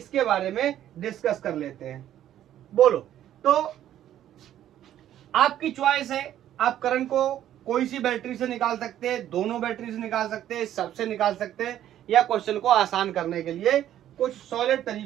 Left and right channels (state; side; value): quieter; left; 11.7 dB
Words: बारे में डिस्कस कर लेते हैं। बोलो, तो आपकी चॉइस है, आप करंट को कोई सी बैटरी से निकाल सकते हैं, दोनों बैटरी से निकाल सकते हैं, सबसे निकाल सकते हैं, या क्वेश्चन को आसान करने के लिए कुछ सॉलिड